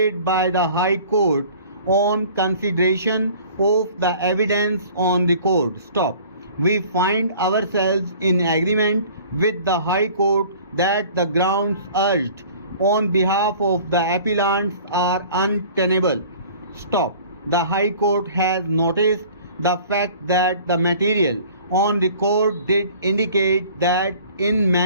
by the High Court on consideration of the evidence on record. Stop. We find ourselves in agreement with the High Court that the grounds urged on behalf of the appellants are untenable. Stop. The High Court has noticed the fact that the material on record did indicate that in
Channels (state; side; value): inverted; both; correlation -0.48